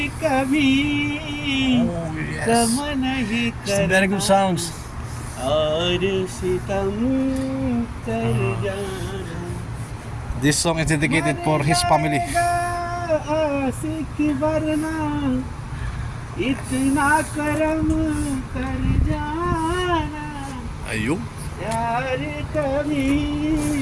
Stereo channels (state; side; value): identical; both; correlation 1.00